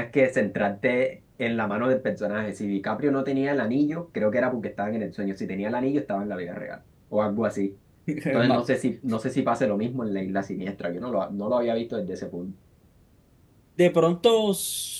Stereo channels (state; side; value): identical; both; correlation 1.00